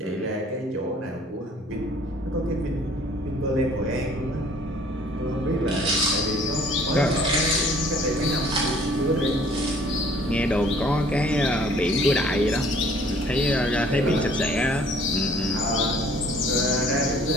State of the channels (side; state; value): both; normal; correlation 0.56